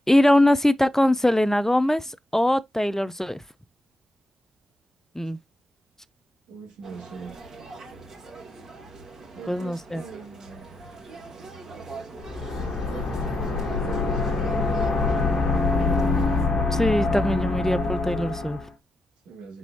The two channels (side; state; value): both; normal; correlation 0.85